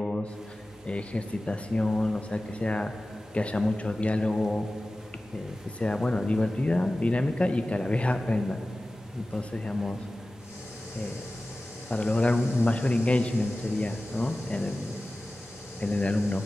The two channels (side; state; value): both; normal; correlation 0.96